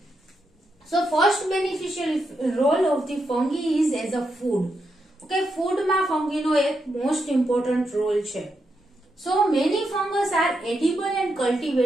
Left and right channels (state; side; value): normal; both; correlation 0.83